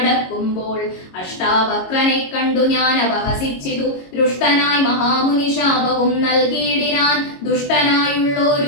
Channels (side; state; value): right; late; 22 ms